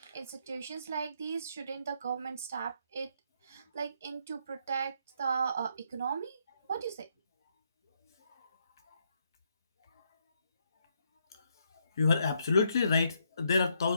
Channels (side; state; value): both; inverted; correlation -0.75